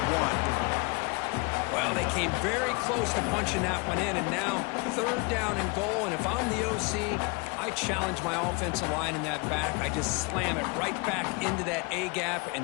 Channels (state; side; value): quieter; right; 29.6 dB